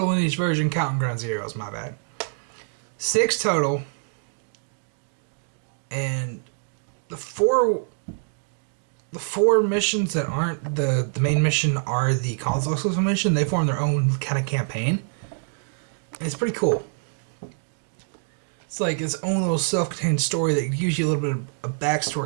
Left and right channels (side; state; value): left; silent; digital silence